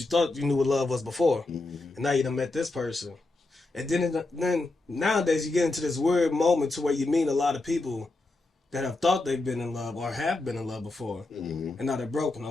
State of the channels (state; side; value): quieter; right; 3.1 dB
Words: thought you knew what love was before, and now you done met this person, and then nowadays you get into this weird moment to where you meet a lot of people that have thought they've been in love or have been in love before, and now they're broken,